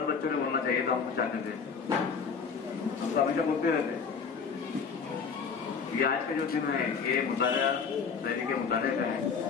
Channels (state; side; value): quieter; right; 5.8 dB